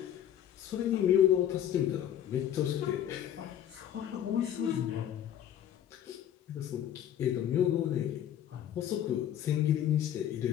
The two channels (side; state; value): right; quieter; 10.6 dB